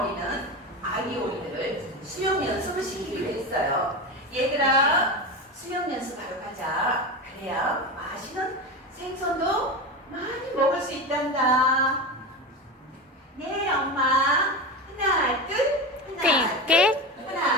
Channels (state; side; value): normal; both; correlation 0.22